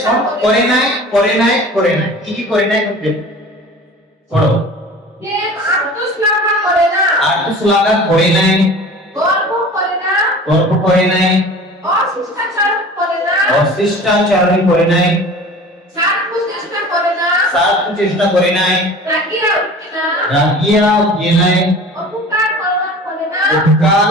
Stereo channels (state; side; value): normal; both; correlation 0.40